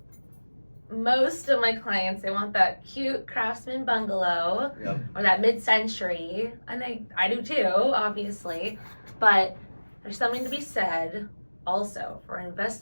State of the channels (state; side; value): inverted; both; correlation -1.00